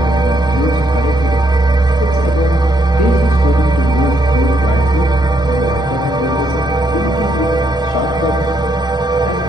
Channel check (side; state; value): both; normal; correlation 0.75